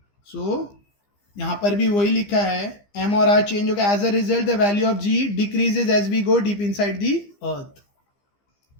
सो यहाँ पर भी वही लिखा है, एम और आर चेंज होगा। As a result the value of G decreases as we go deep inside the earth.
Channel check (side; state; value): right; late; 15 ms